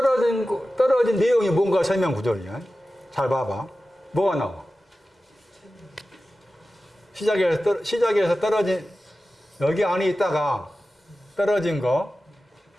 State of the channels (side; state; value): both; normal; correlation 0.94